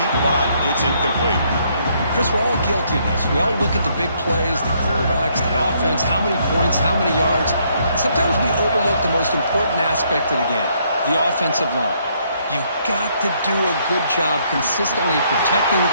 but it's incomplete. Chris, we're all guilty of this. We all look at the big plays, the quarterbacks, the offense, how many points, how many yards. Sometimes we overlook the most important aspect of the game, the offensive line. You've got to do a good job consistently protecting the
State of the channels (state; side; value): inverted; both; correlation -0.70